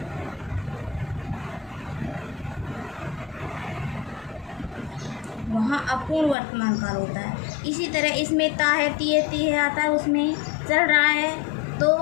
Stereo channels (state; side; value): drops out; right; at 6.4 s